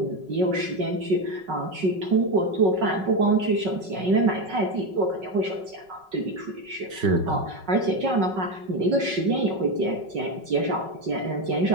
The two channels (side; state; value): left; late; 5.3 ms